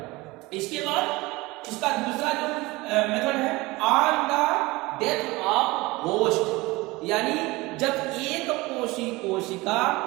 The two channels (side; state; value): left; quieter; 21.8 dB